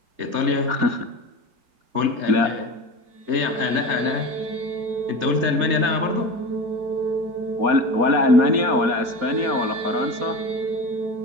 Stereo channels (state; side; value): late; left; 4.2 ms